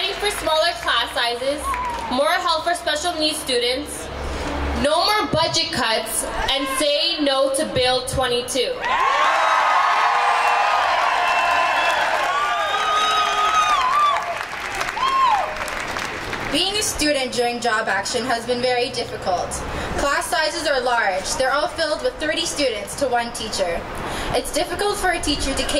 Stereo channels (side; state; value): both; identical; correlation 1.00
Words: for smaller class sizes, more help for special needs students, no more budget cuts, and say no to Bill 22. Being a student during job action has been very difficult. Class sizes are large. They're all filled with 30 students to one teacher. It's difficult for a teacher to